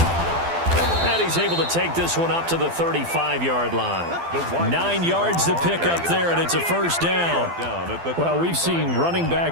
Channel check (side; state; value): left; late; 12 ms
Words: And he's able to take this one up to the 35-yard line. 9 yards to pick up there, and it's a first down. Well, we've seen running